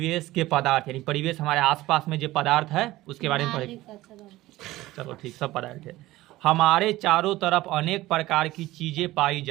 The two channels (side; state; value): left; quieter; 17.3 dB